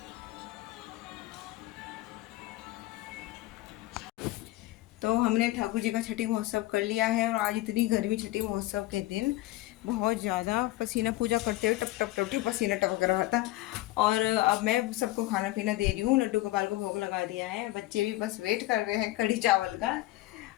तो हमने ठाकुर जी का छठी महोत्सव कर लिया है, और आज इतनी गर्मी छठी महोत्सव के दिन बहुत ज़्यादा पसीना, पूजा करते हुए टप टप टप टप पसीना टपक रहा था। और अब मैं सबको खाना पीना दे रही हूँ, लड्डू गोपाल को भोग लगा दिया है, बच्चे भी बस वेट कर रहे हैं कढ़ी चावल का।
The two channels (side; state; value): right; quieter; 17.5 dB